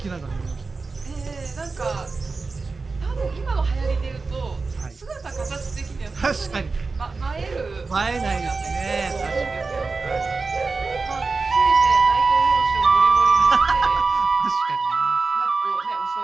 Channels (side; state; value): left; quieter; 4.1 dB